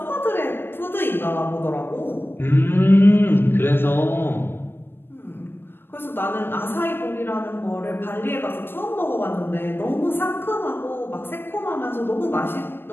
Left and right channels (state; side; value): late; right; 0.10 ms